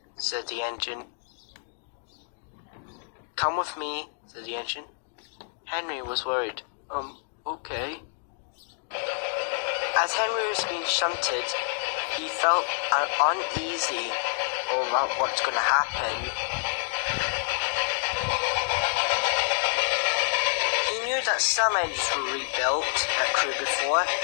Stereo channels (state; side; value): silent; right; digital silence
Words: said the engine. Come with me, said the engine. Henry was worried. Okay. As Henry was being shunted, he felt uneasy about what's going to happen. He knew that some engines were rebuilt at crew before,